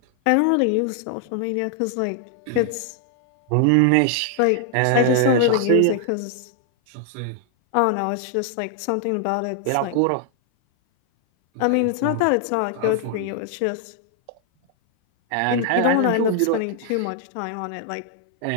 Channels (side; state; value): both; different; correlation 0.00